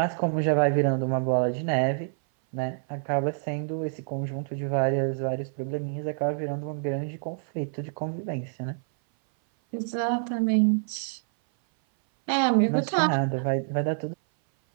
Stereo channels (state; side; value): silent; left; 58 dB below the other